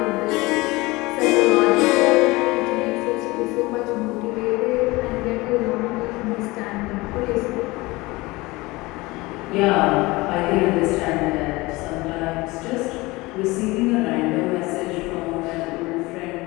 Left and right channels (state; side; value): quieter; right; 22.0 dB